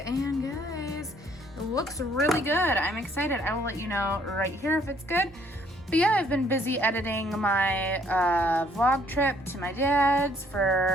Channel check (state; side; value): normal; both; correlation 0.63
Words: and guys, it looks really good. I'm excited. I will let you know right here if it's good. But yeah, I've been busy editing my vlog trip to my dad's